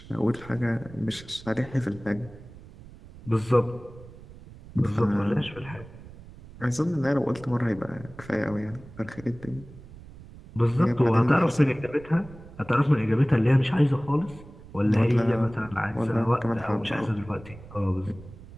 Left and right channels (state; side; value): noise; right; rumble, 18 dB below the sound